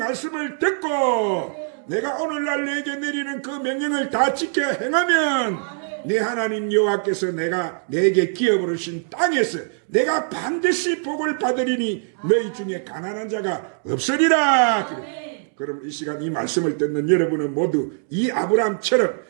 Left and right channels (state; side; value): silent; left; 64 dB below the other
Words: 듣고 내가 오늘날 내게 내리는 그 명령을 다 지켜 행하면 내 하나님 여호와께서 내게 기업으로 주신 땅에서 내가 반드시 복을 받으리니 너희 중에 가난한 자가 없으리라. 그럼 이 시간 이 말씀을 듣는 여러분은 모두 이 아브라함처럼